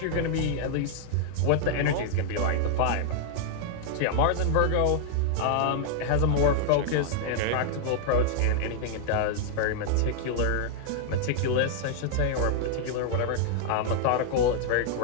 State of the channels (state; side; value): different; both; correlation -0.01